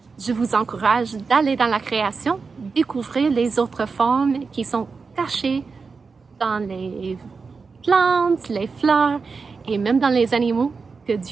je vous encourage d'aller dans la création, découvrir les autres formes qui sont cachées dans les plantes, les fleurs et même dans les animaux que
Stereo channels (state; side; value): quieter; left; 4.8 dB